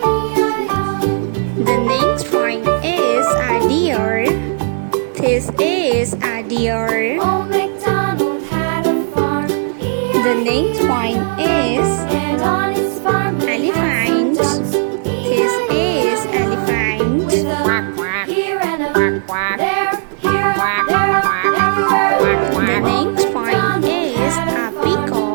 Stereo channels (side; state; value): left; silent; digital silence